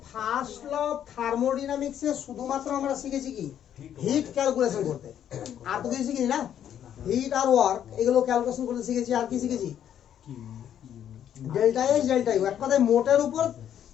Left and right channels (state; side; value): quieter; right; 9.9 dB